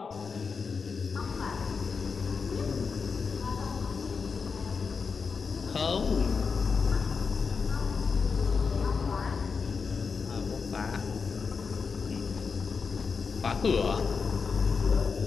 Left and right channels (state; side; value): quieter; right; 5.3 dB